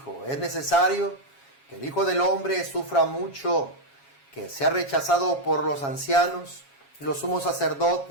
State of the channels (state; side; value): late; right; 7.3 ms